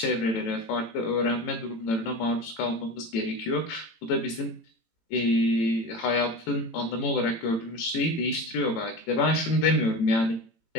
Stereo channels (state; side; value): late; right; 18 ms